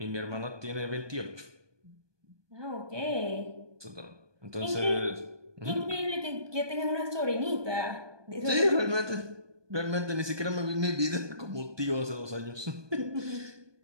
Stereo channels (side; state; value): left; late; 1.2 ms